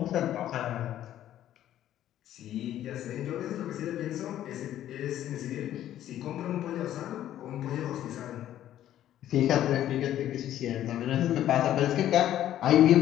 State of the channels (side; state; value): right; quieter; 12.1 dB